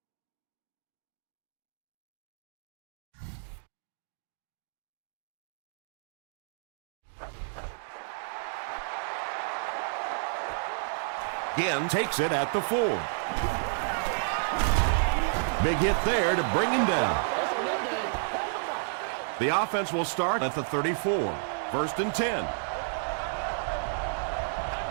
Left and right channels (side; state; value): left; silent; digital silence